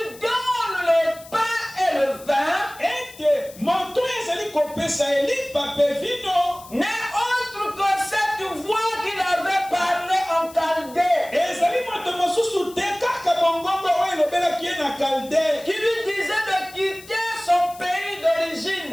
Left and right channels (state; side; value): noise; left; hiss, 20 dB below the sound